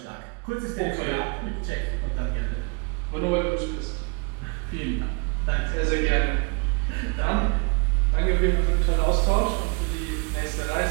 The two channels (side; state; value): left; quieter; 32.5 dB